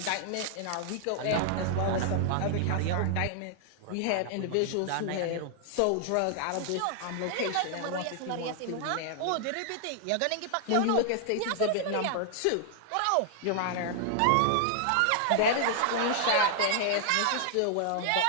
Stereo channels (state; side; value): different; both; correlation 0.00